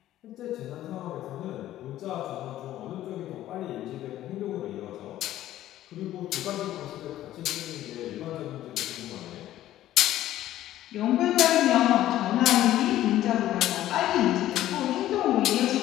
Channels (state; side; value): quieter; right; 13.6 dB